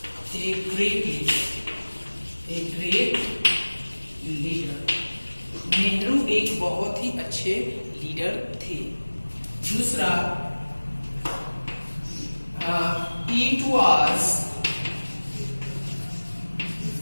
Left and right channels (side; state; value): both; inverted; correlation -1.00